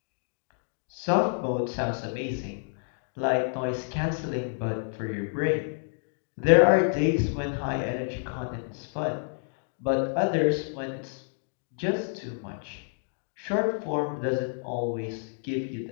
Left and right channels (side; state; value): right; silent; digital silence